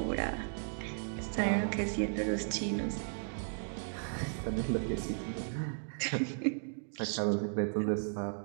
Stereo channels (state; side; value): silent; left; digital silence